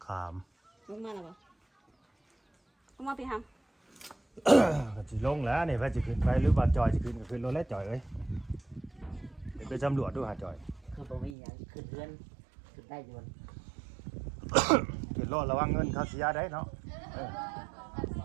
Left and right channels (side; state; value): left; drops out; at 11.4 s